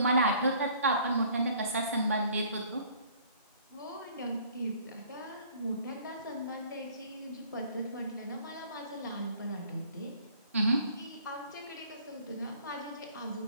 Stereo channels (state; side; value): inverted; both; correlation -0.55